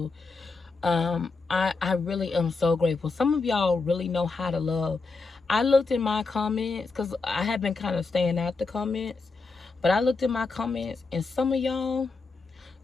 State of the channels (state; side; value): quieter; right; 4.1 dB